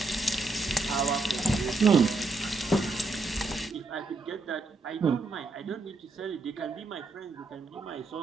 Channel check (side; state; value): left; quieter; 3.5 dB